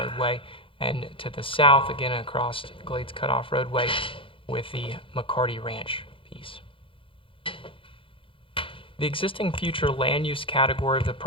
and to the south, again across Glades Cutoff Roadway with the McCarty Ranch piece. The existing future land use category of the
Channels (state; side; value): late; right; 0.25 ms